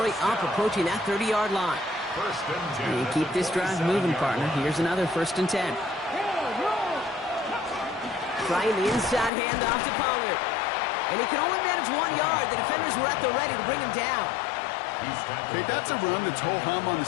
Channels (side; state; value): right; drops out; at 9.3 s